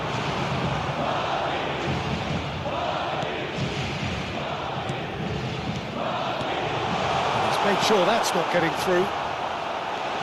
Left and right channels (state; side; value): identical; both; correlation 1.00